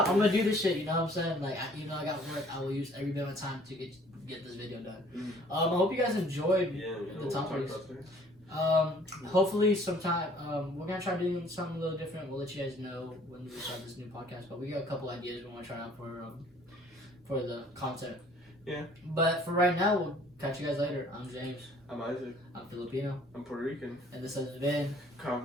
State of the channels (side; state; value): both; normal; correlation 0.56